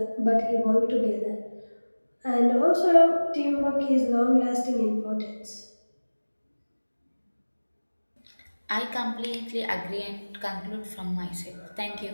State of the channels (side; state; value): both; inverted; correlation -1.00